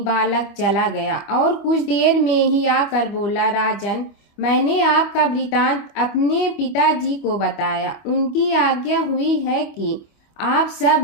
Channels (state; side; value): late; right; 25 ms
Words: बालक चला गया और कुछ देर में ही आकर बोला, राजन, मैंने आपका वृतांत अपने पिताजी को बताया। उनकी आज्ञा हुई है कि आप सब